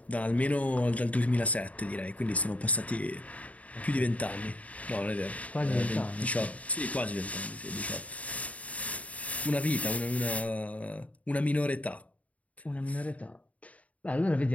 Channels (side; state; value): right; late; 0.068 ms